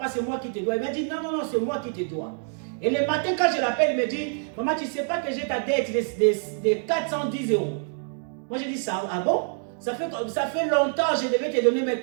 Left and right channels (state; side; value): silent; left; 61 dB below the other